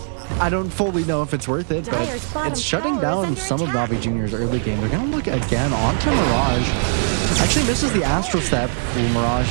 I don't fully know if it's worth it, but it's shutting down some of Navi Jr.'s early game. They're going to look again onto Mirage. Actually misses the Astral Step. Ooh,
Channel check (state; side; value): silent; left; digital silence